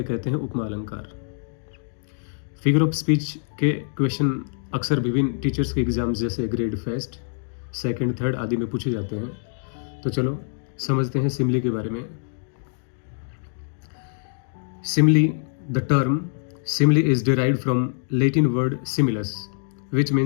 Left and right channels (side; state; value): right; silent; 62 dB below the other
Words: कहते हैं उपमा अलंकार। फिगर ऑफ स्पीच के क्वेश्चन अक्सर विभिन्न टीचर्स के एग्जाम्स जैसे ग्रेड फर्स्ट, सेकंड, थर्ड आदि में पूछे जाते हैं। तो चलो समझते हैं सिमिली के बारे में। Simile, the term simile is derived from Latin word similis which